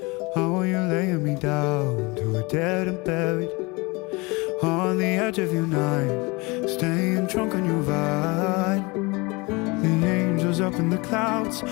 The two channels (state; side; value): quieter; right; 26.0 dB